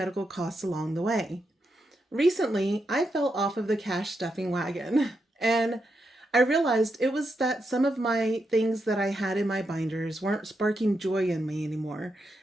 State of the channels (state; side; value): normal; both; correlation 0.84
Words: costs along the way. Recently, I fell off of the cash stuffing wagon and I realized it was that some of my things that I had in my binders weren't sparking joy in me anymore,